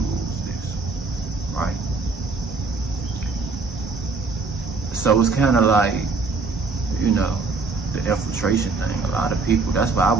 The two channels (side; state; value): left; quieter; 4.1 dB